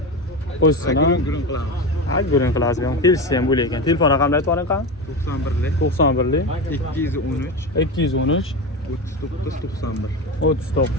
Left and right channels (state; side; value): normal; both; correlation 0.21